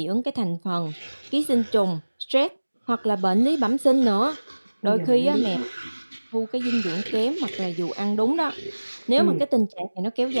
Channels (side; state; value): both; inverted; correlation -1.00